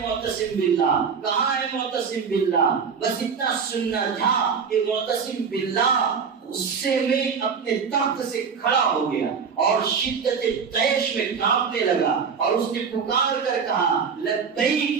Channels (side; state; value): left; quieter; 6.1 dB